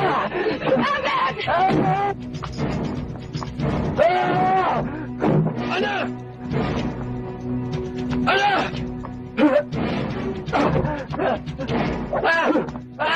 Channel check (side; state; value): both; identical; correlation 1.00